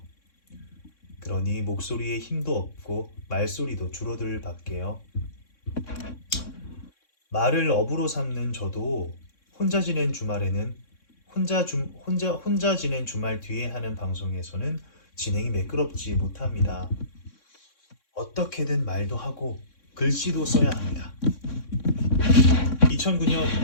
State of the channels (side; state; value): right; late; 3.6 ms